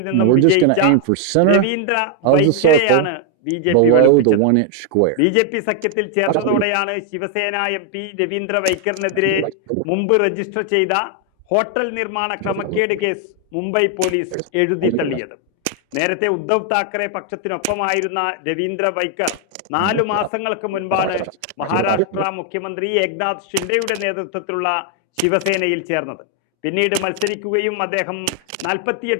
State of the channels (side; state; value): both; different; correlation 0.00